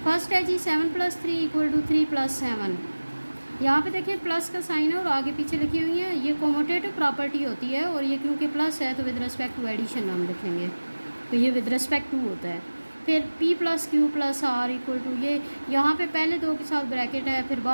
फर्स्ट है जी 7 + 3 = 3 + 7। यहाँ पे देखिए प्लस का साइन है और आगे पीछे लिखी हुई है। ये कोमोटेटिव प्रॉपर्टी होती है, और ये क्योंकि प्लस है तो विद रिस्पेक्ट टू एडिशन हम लिखेंगे, तो ये विद रिस्पेक्ट टू होता है। फिर P + Q + R = ये यहाँ पे पहले दो के साथ ब्रैकेट है, फिर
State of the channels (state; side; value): inverted; both; correlation -1.00